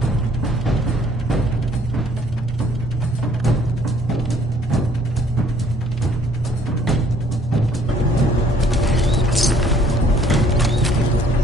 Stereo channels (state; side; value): normal; both; correlation 0.60